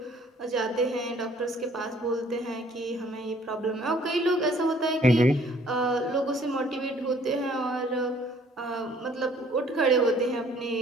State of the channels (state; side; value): normal; both; correlation 0.58